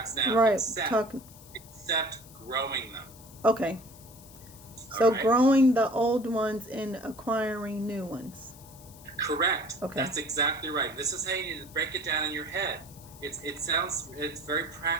now, Right. except growing them. Okay. So right? growing the old ones and acquiring new ones. Correct. Okay. That's exactly right. This is how you need to break it down in your head. It's very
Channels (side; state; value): left; noise; hiss, 21 dB below the sound